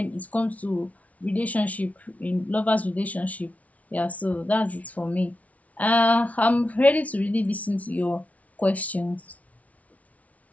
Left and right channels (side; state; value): right; late; 0.069 ms